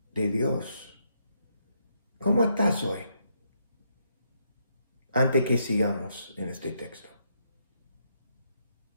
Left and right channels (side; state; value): both; inverted; correlation -0.76